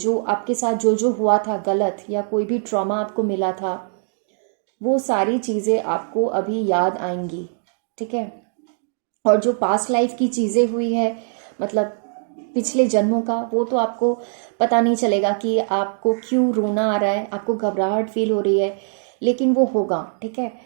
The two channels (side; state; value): left; silent; digital silence